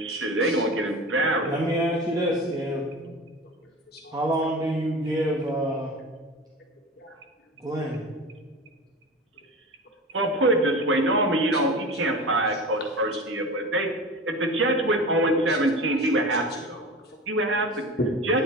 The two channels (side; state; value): both; normal; correlation 0.32